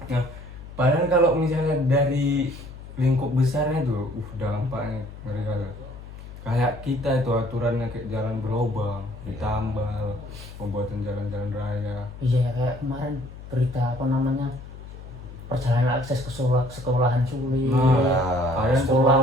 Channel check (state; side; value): noise; left; hum, 14 dB below the sound